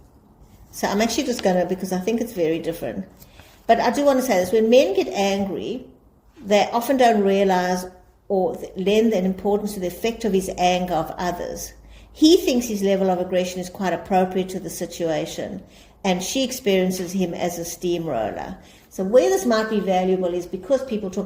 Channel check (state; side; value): identical; both; correlation 1.00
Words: So I'm actually just going to, because I think it's very different. But I do want to say this. When men get angry, they often don't realize or lend an importance to the effect of his anger of others. He thinks his level of aggression is quite appropriate to the situation, and she experiences him as a steamroller. So where this might be valuable is because people